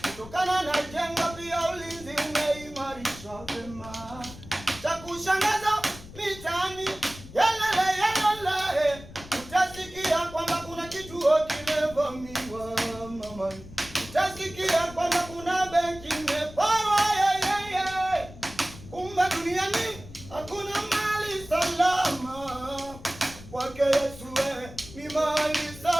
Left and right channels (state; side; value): noise; left; rumble, 16 dB below the sound